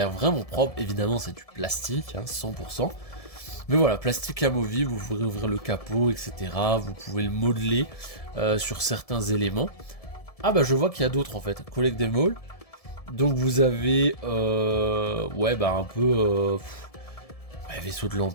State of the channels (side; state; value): right; late; 1.7 ms